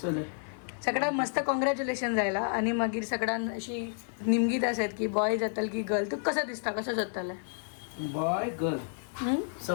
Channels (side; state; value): right; silent; digital silence